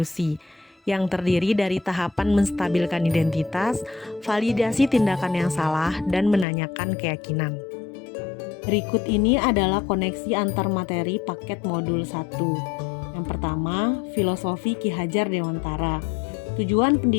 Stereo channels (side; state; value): right; drops out; at 6.5 s